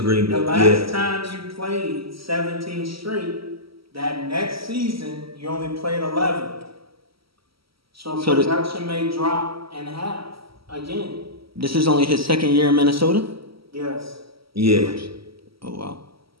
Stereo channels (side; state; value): left; late; 0.75 ms